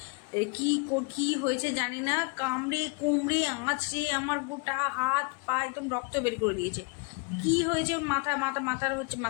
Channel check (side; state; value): right; quieter; 32.1 dB